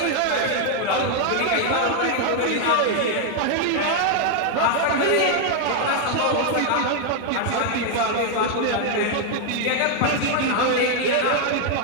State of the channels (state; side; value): different; both; correlation 0.00